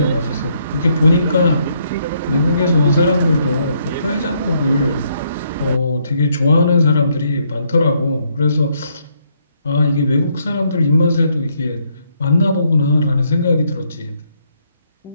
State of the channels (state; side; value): inverted; both; correlation -0.72